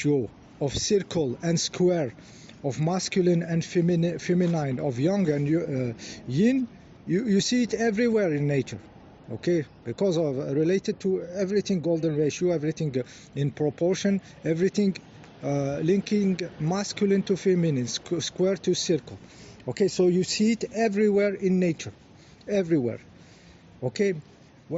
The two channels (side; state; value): both; identical; correlation 1.00